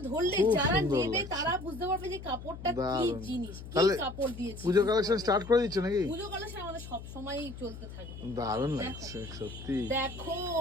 ধরলে খুব যারা সুন্দর নেবে লাগছে। তারা বুঝতে পারবে যে কাপড়টা কি দারুণ। জিনিস, কি তাহলে কাপড় দিয়েছে। পুজো কালেকশন স্টার্ট করে দিচ্ছ নাকি? পুজো কালেকশন আমাদের সব সময়ই চলতে থাকে। দারুণ দেখো। লাগছে সত্যি। দেখো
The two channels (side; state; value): left; noise; hum, 12 dB below the sound